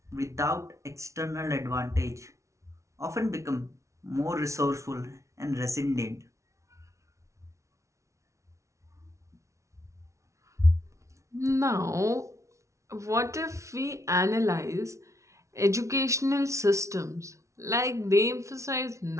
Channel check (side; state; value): left; late; 0.14 ms